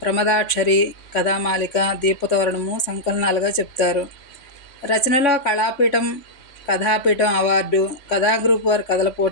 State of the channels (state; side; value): late; right; 3.8 ms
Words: కథామాలిక, దీపతోరణము సంకలనాలుగా చెప్తారు. రచనలో కళాపీఠం, కథాపీఠం అవార్డు, కథా గ్రూప్ వారి కథల